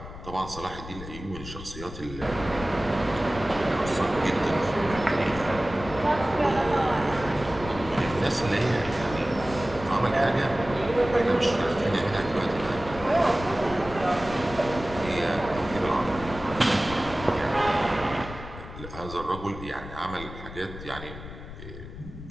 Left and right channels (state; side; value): noise; left; rumble, 12 dB below the sound